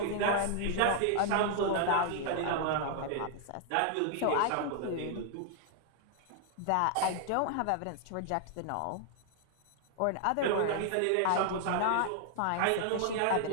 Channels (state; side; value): different; both; correlation 0.00